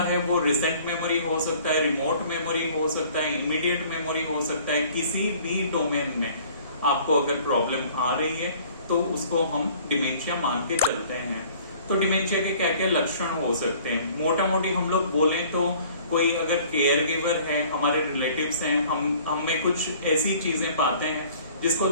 है वो रिसेंट मेमोरी हो सकता है, रिमोट मेमोरी हो सकता है, इमीडिएट मेमोरी हो सकता है। किसी भी डोमेन में आपको अगर प्रॉब्लम आ रही है तो उसको हम डिमेंशिया मान के चलते हैं। तो डिमेंशिया के क्या क्या लक्षण हो सकते हैं? मोटा मोटी हम लोग बोले तो कोई अगर केयर गिवर है, हमारे रिलेटिव्स हैं, हम में कुछ ऐसी चीजें पाते हैं जिसको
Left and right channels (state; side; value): inverted; both; correlation -0.52